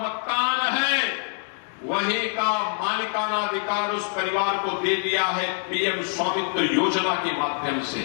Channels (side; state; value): right; silent; 62 dB below the other